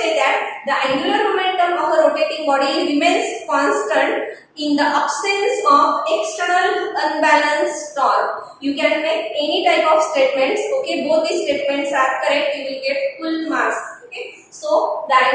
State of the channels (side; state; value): both; identical; correlation 1.00